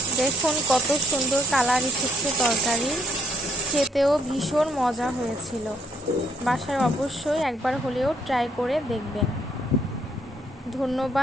দেখুন কত সুন্দর কালার এসেছে তরকারি, খেতেও ভীষণ মজা হয়েছিল। বাসায় অবশ্যই একবার হলেও ট্রাই করে দেখবেন।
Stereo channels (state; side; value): normal; both; correlation 0.69